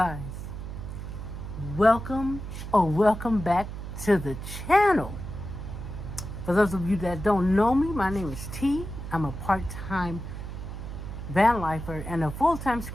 welcome back to the channel. For those of you that don't know me, my name is T. I'm a part-time van lifer and a full-time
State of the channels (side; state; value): right; noise; hum, 8 dB below the sound